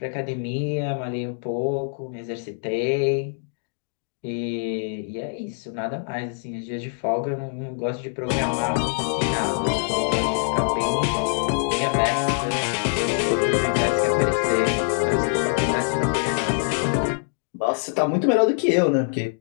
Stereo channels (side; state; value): right; silent; digital silence